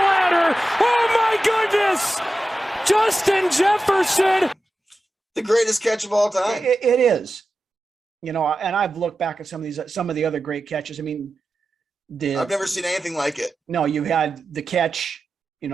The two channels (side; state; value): both; normal; correlation 0.93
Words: Oh my goodness! Justin Jefferson. The greatest catch of all time. It is. And I've looked back at some of the other great catches. I mean, I've never seen anything like it. No, you had the catch,